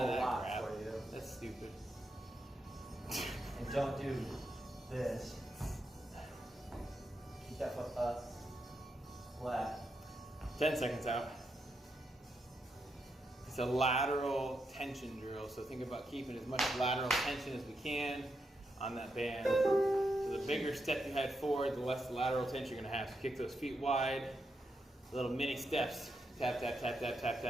that lot crap. for you. That's stupid. And don't do this. Keep that foot up, flat. 10 seconds out. It's a lateral tension drill, so think about keeping as much lateral tension as we can on that band. So the bigger step you head forward, the less lateral tension you're gonna have. So kick those feet wide, little mini steps. Tap, tap, tap, tap, tap,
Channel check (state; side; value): normal; both; correlation 0.83